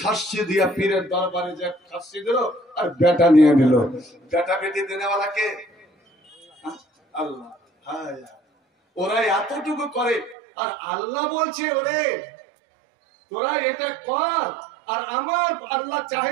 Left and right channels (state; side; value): drops out; left; at 10.4 s